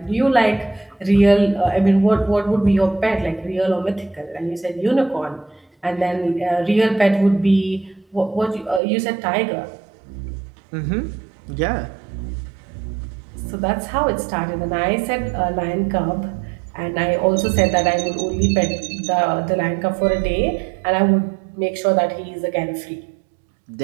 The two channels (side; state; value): left; drops out; at 8.8 s